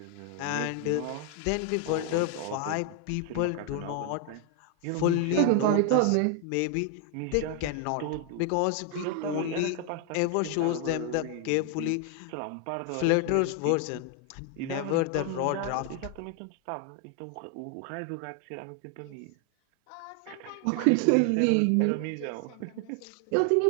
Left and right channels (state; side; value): different; both; correlation 0.00